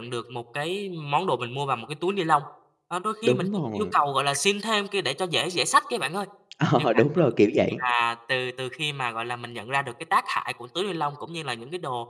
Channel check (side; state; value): both; identical; correlation 1.00